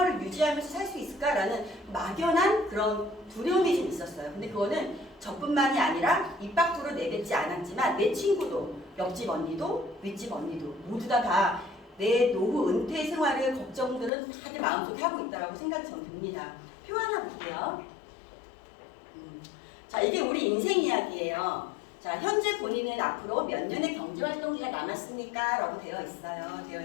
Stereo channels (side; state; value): right; drops out; at 14.1 s